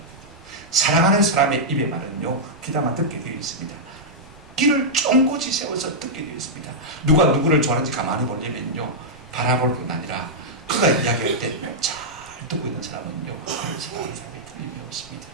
사랑하는 사람의 입에 말은요 귀담아 듣게 되어 있습니다. 귀를 쫑긋이 세워서 듣게 되어 있습니다. 누가 누구를 좋아하는지 가만히 보려면요 바라볼 뿐 아니라 그가 이야기할 때 잘 듣고 있는 사람은요 그를 사랑하는 사람이 틀림이 없습니다.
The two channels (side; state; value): right; noise; rumble, 25 dB below the sound